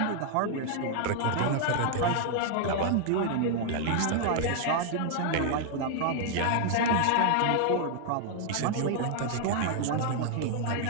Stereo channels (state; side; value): different; both; correlation 0.00